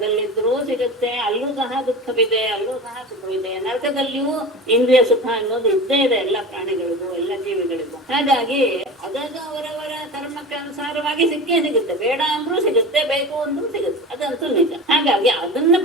ಸಿಗುತ್ತೆ, ಅಲ್ಲೂ ಸಹ ದುಃಖವಿದೆ, ಅಲ್ಲೂ ಸಹ ಸುಖವಿದೆ. ನರಕದಲ್ಲಿಯೂ ಇಂದ್ರಿಯ ಸುಖ ಅನ್ನೋದು ಇದ್ದೇ ಇದೆ ಎಲ್ಲ ಪ್ರಾಣಿಗಳಿಗೂ ಎಲ್ಲ ಜೀವಿಗಳಿಗೂ. ಹಾಗಾಗಿ ಅದದು ಅವರವರ ಕರ್ಮಕ್ಕೆ ಅನುಸಾರವಾಗಿ ಸಿಕ್ಕೇ ಸಿಗುತ್ತೆ. ಬೇಡ ಅಂದ್ರೂ ಸಿಗುತ್ತೆ, ಬೇಕು ಅಂದ್ರೂ ಸಿಗುತ್ತೆ, ಅದಂತೂ ನಿಜ. ಹಾಗಾಗಿ ಅದನ್ನ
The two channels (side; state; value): both; normal; correlation 0.32